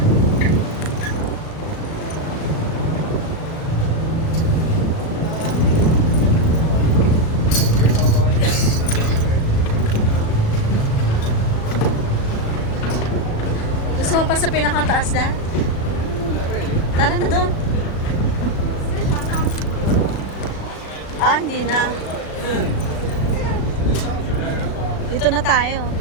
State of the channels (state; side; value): late; right; 37 ms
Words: Gusto mo pa sa pinakataas na? Tara na doon. Ah, hindi na. Dito na tayo.